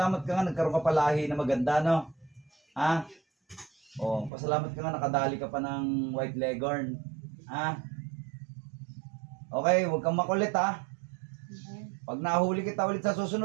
ka nga, nagkaroon ka palahi na maganda, no? Ha? Oh, pasalamat ka nga, nakadali ka pa ng white leghorn. Ha? Okay, huwag kang makulit, ha? Pag nahuli kita ulit sa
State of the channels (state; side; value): drops out; left; at 4.3 s